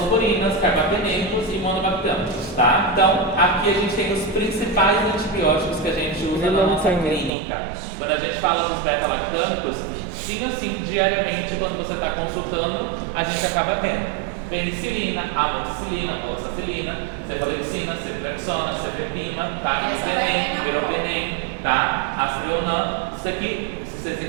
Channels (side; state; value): left; drops out; at 7.3 s